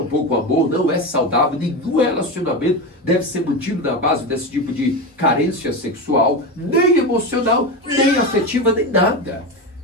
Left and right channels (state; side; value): normal; both; correlation 0.19